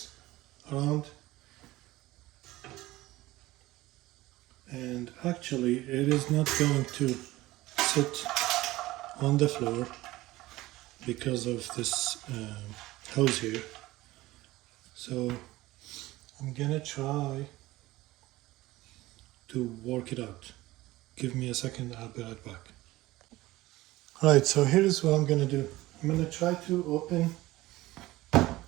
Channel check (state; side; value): quieter; left; 18.0 dB